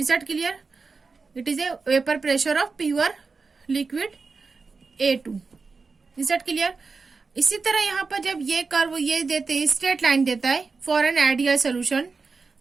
that clear? It is a vapour pressure of pure liquid A2. Is that clear? इसी तरह यहाँ पर जब ये curve ये देते हैं, straight line देता है फॉर एन आइडियल सोल्यूशन,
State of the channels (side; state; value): left; quieter; 4.5 dB